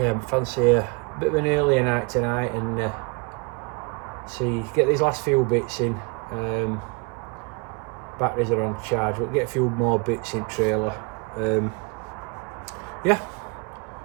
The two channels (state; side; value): quieter; left; 31.7 dB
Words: I fancy a bit of an earlier night tonight and get these last few bits in. Batteries are on charge, we'll get a few more bits in trailer. Yeah,